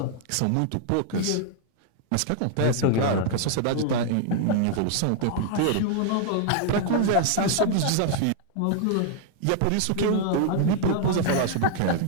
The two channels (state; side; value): different; both; correlation 0.00